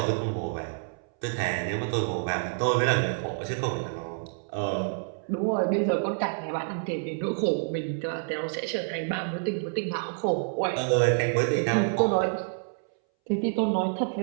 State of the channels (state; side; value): silent; left; 59 dB below the other